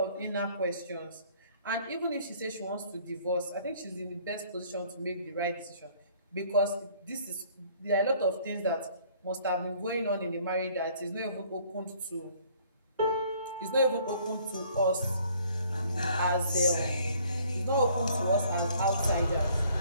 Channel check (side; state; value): both; inverted; correlation -0.59